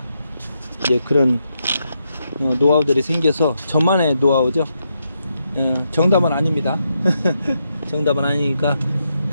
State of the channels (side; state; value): both; inverted; correlation -0.82